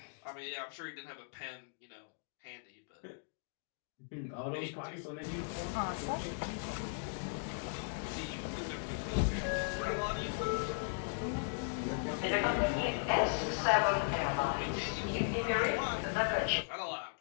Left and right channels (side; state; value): right; silent; digital silence